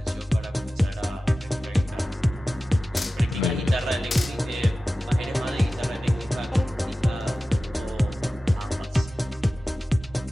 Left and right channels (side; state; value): both; normal; correlation 0.96